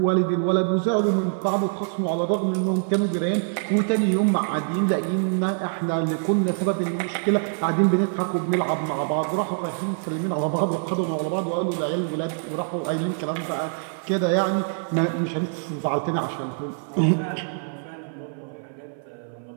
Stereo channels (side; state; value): left; silent; 56 dB below the other